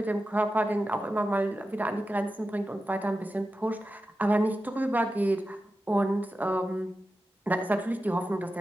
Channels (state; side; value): normal; both; correlation 0.92